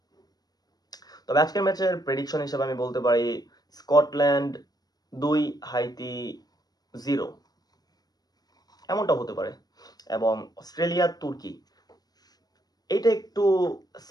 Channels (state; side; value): late; right; 0.19 ms